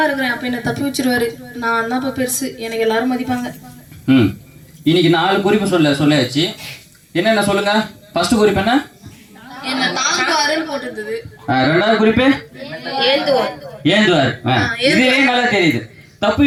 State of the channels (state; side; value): identical; both; correlation 1.00